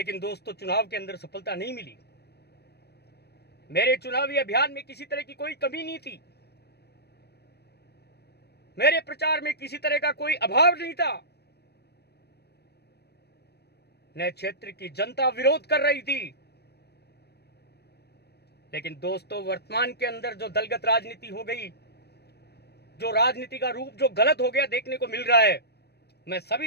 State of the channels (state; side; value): late; right; 0.47 ms